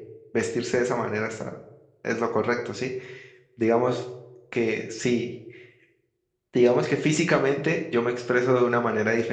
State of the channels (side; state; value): both; identical; correlation 1.00